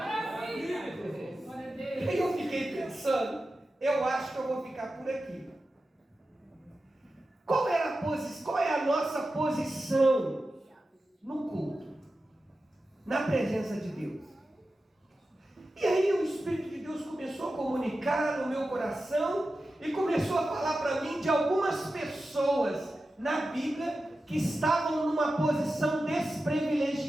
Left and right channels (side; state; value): both; normal; correlation 0.93